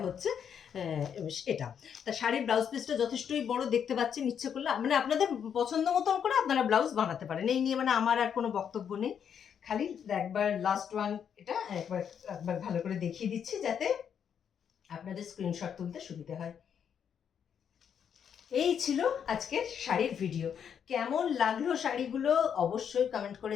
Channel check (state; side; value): quieter; right; 8.0 dB